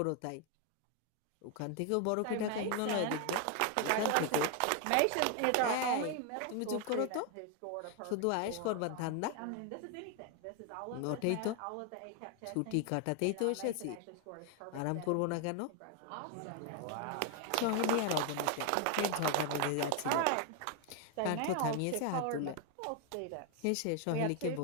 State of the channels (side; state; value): both; different; correlation 0.01